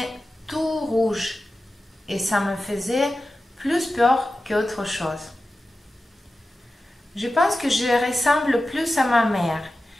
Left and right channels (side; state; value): both; normal; correlation 0.93